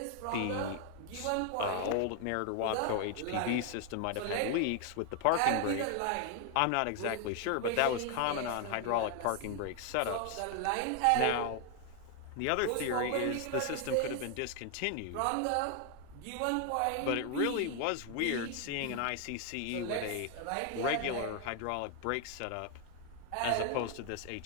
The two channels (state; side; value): different; both; correlation 0.00